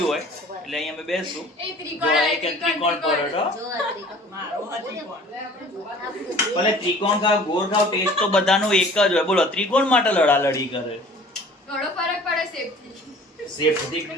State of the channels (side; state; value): both; normal; correlation 0.48